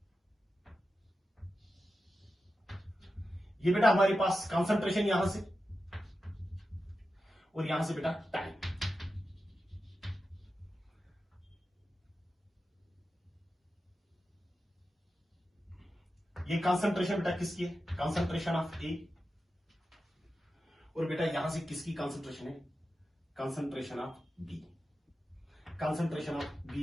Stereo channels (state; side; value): normal; both; correlation 0.91